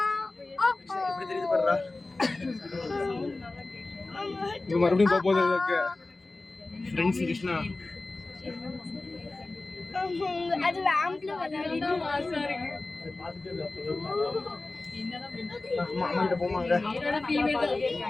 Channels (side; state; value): right; quieter; 3.2 dB